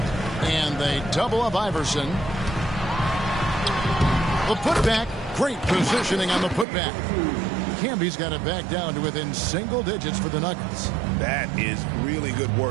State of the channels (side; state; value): left; drops out; at 6.7 s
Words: And they double up Iverson. The putback. Great positioning on the putback. Camby's got it back down to within single digits for the Nuggets. That is really good